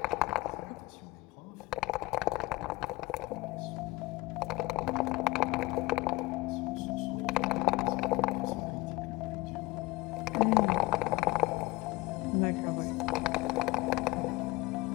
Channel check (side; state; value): right; quieter; 21.0 dB